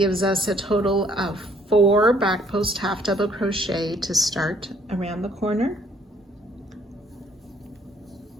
us a total of 4 back post half double crochet to start around the corner.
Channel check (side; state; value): both; normal; correlation 0.63